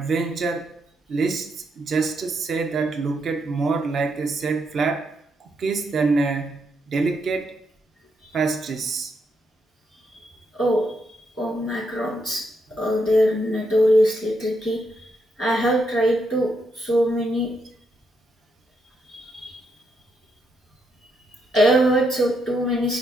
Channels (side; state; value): both; normal; correlation 0.79